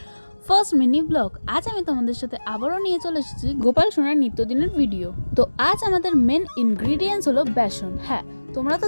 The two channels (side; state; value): both; inverted; correlation -1.00